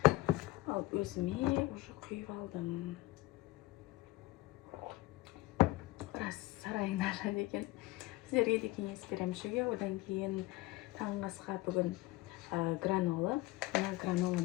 Ал өзіме уже құйып алдым. Рас сарайың нашар екен. Сіздерге де кеңес беремін ішуге. Одан кейін таңғы асқа бүгін гранола. Мына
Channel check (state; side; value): quieter; right; 18.1 dB